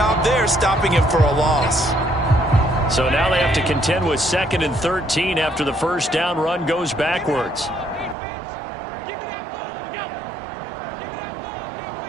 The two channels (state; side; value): drops out; left; at 8.2 s